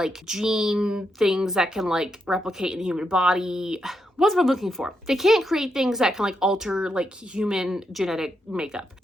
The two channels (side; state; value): both; normal; correlation 0.82